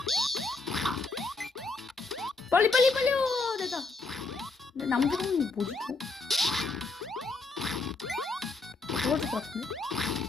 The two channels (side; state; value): right; quieter; 3.7 dB